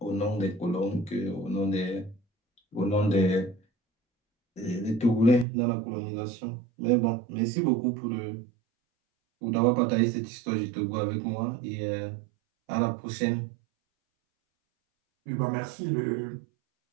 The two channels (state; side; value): drops out; left; at 5.5 s